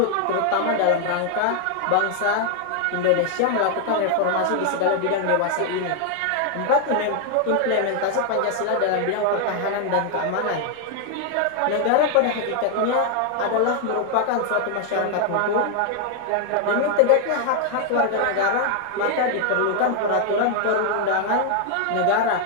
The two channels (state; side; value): different; both; correlation 0.00